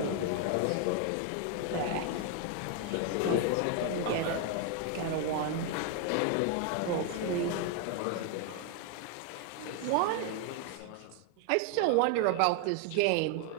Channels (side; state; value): both; different; correlation 0.01